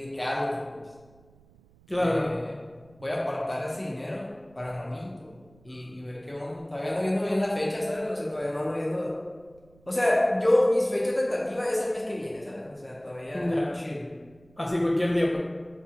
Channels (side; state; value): right; noise; rumble, 28 dB below the sound